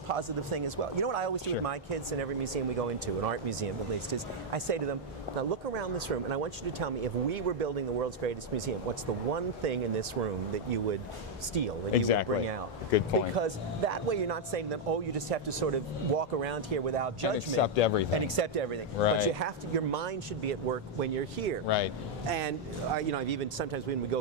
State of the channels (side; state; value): both; normal; correlation -0.02